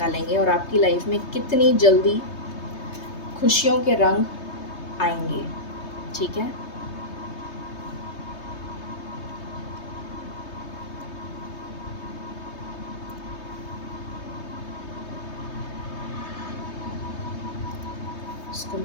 और आपकी लाइफ में कितनी जल्दी खुशियों के रंग आएंगे। ठीक है। इसको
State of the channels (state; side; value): late; right; 3.2 ms